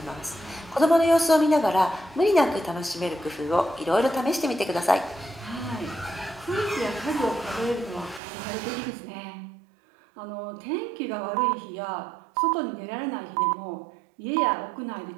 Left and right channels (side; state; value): left; drops out; at 8.2 s